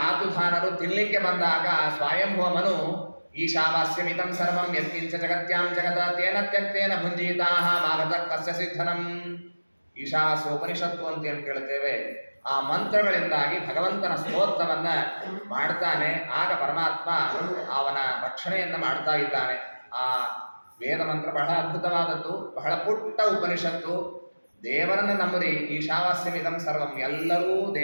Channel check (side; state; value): both; inverted; correlation -1.00